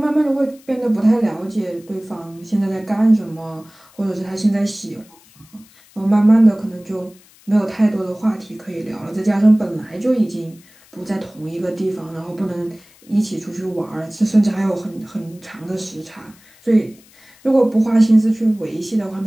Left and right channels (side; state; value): left; noise; hiss, 27 dB below the sound